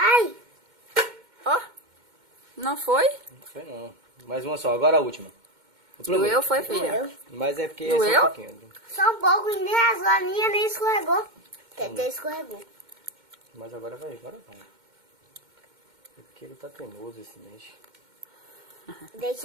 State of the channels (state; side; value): late; left; 2.1 ms